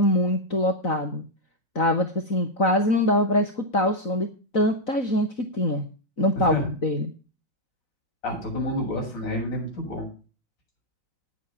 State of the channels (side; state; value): right; late; 4.0 ms